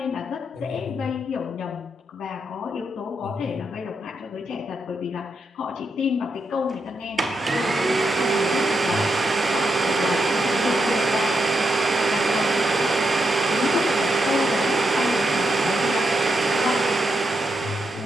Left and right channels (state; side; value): normal; both; correlation 0.82